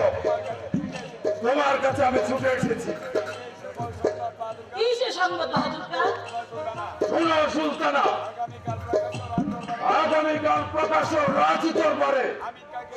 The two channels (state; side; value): identical; both; correlation 1.00